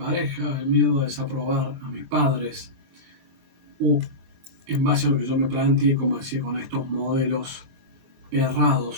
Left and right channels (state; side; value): late; left; 23 ms